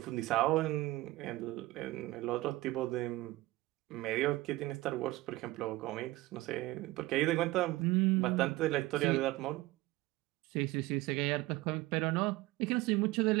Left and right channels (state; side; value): quieter; left; 19.1 dB